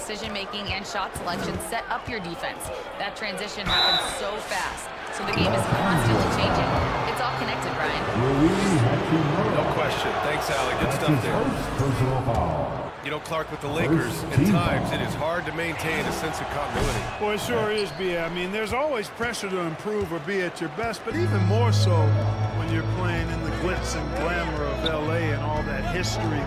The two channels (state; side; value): identical; both; correlation 1.00